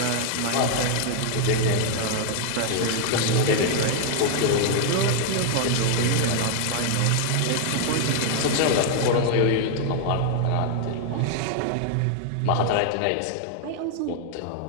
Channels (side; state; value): both; different; correlation 0.00